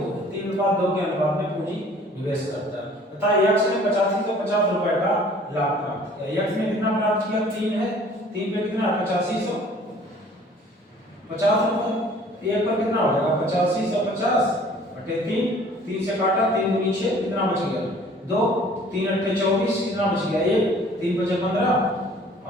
है, 3:2 के अनुपात में पूंजी निवेश करता है तथा यक्स ने 8550 रुपए का लाभ प्राप्त किया। यक्स ने कितना प्राप्त किया? 3 है, 3 पे कितना? 8550 रुपए। एक पर कितना हो जाएगा? 8550 बटे 3, 3 से काटा, 3 दूनी 6, कितना बच गया? 2, 3 अट्ठे 24, कितना बच गया? 1, 3 बचे 15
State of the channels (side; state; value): both; normal; correlation 0.52